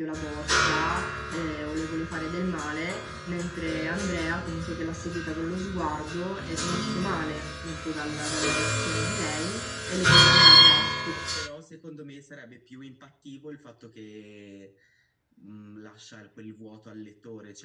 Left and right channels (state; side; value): identical; both; correlation 1.00